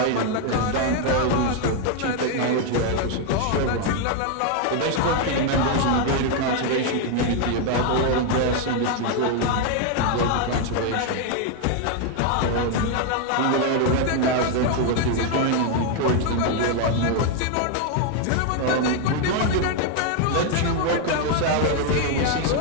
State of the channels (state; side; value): different; both; correlation 0.01